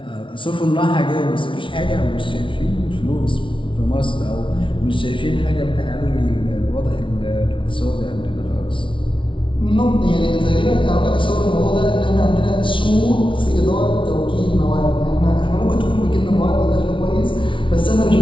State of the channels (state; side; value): late; right; 0.25 ms